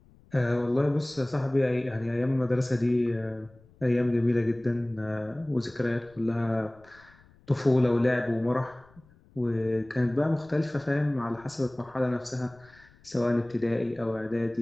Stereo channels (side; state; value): left; noise; rumble, 28 dB below the sound